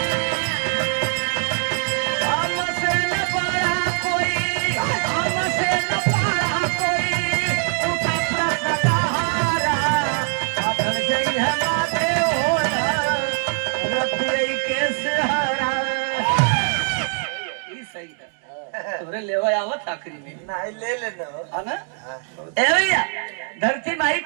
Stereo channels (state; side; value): silent; left; 55 dB below the other